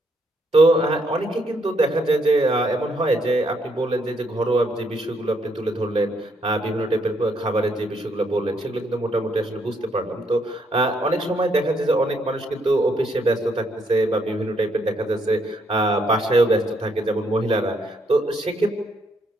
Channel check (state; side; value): normal; both; correlation 0.73